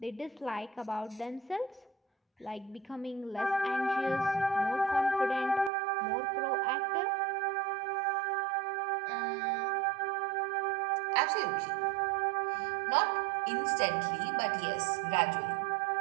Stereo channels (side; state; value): left; drops out; at 5.7 s